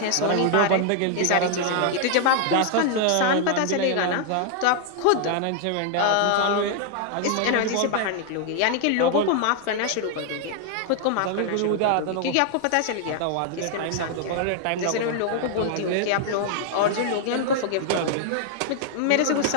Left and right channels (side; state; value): both; different; correlation 0.00